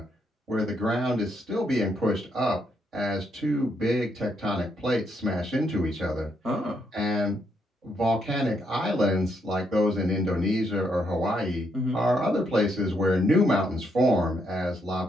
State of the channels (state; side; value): normal; both; correlation 0.76